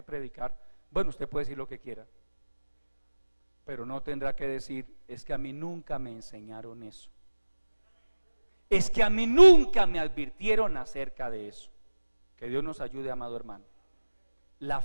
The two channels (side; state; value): both; inverted; correlation -1.00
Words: predicar. Bueno, usted puede decir lo que quiera, pero no tendrá que decir: es que a mí nunca me enseñaron eso, es que a mí nunca me advirtieron acerca de eso. Que Dios nos ayude, amado hermano. La